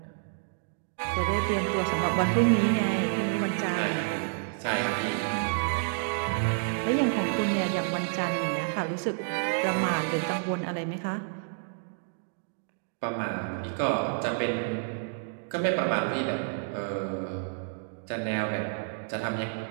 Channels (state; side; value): silent; left; digital silence